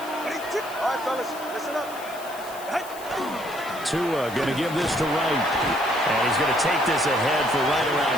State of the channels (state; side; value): noise; left; hiss, 17 dB below the sound